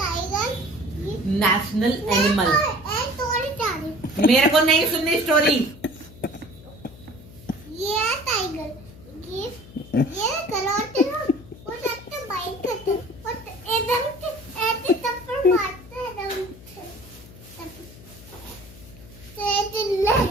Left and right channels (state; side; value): noise; left; hum, 19 dB below the sound